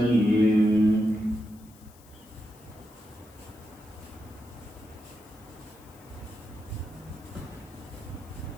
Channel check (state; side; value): noise; left; hiss, 25 dB below the sound